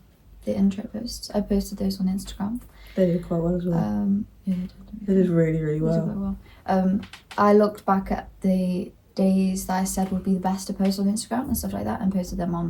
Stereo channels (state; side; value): identical; both; correlation 1.00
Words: the intro posts, I posted those on Instagram. They did quite well as well. Yeah, They did really, really they well. did quite well. I looked back at the days that I said would be the best to post on Instagram and stuff like that, and posted them on